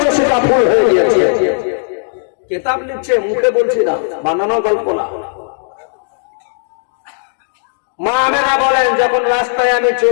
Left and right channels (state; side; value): silent; right; digital silence